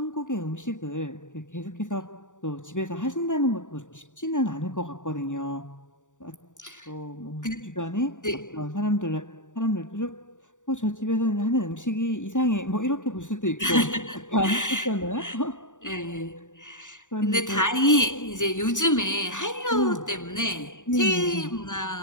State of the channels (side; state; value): right; late; 0.86 ms